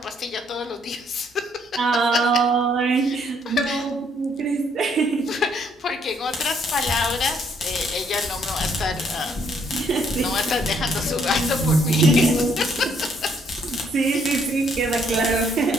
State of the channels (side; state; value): both; normal; correlation 0.68